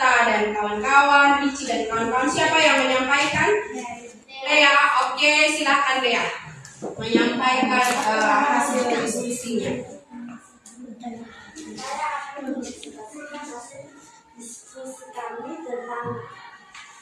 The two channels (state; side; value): identical; both; correlation 1.00